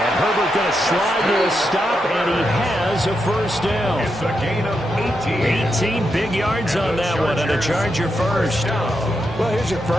Herbert going to slide to a stop, and he has a 1st down. It's a gain of 18. 18 big yards on that one, and a Charger 1st. Well, here's your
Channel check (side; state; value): both; normal; correlation 0.84